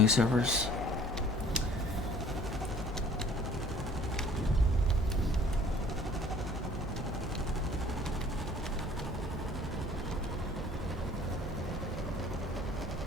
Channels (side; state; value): both; normal; correlation 0.52